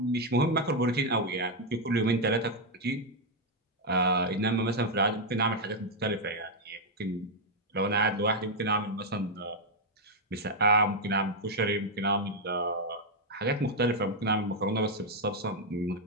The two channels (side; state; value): both; normal; correlation 0.01